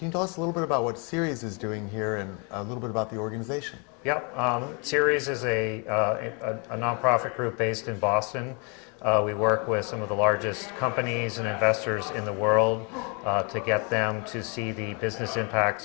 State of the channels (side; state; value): right; quieter; 34.0 dB